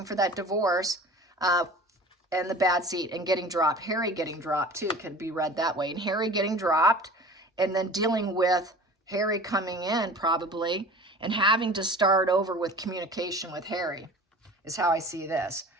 for that divorce and the bad seat and getting dropped. Harry getting dropped too could be read that way. And Harry getting dropped and then dealing with Harry coming in probably and having to start over with communication with Harry is how I see this.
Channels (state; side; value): normal; both; correlation 0.41